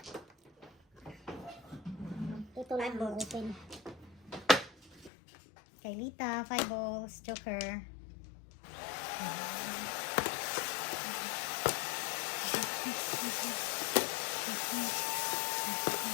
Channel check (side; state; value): right; drops out; at 5.1 s